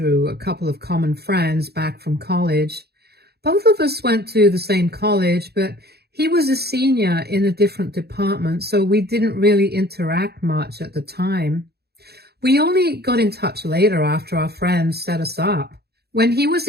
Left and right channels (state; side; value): late; left; 0.47 ms